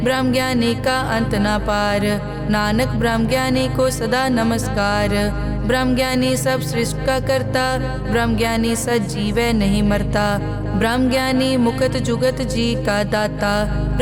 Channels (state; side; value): identical; both; correlation 1.00